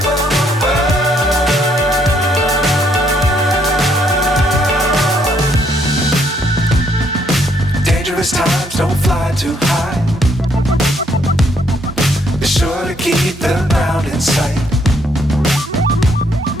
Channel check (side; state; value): both; normal; correlation 0.70